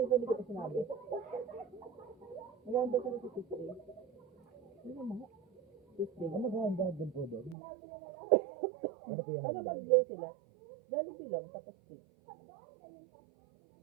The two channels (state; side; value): drops out; left; at 7.6 s